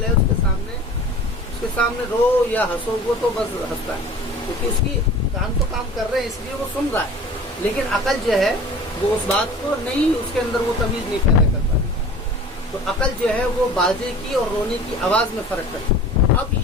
ہے اس کے سامنے رو یا ہنسو وہ تو بس ہنستا ہے، کیونکہ اس کی کان تو کام کر رہے ہیں اس لیے وہ سن رہا ہے. لیکن عقل جو ہے وہ اس بات کو نہیں، اس کے اندر وہ تمیز نہیں پیدا کر پاتی. تو عقل جو ہے وہ باجے کی اور رونے کی آواز میں فرق کرتی ہے. اب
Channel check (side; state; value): both; normal; correlation 0.42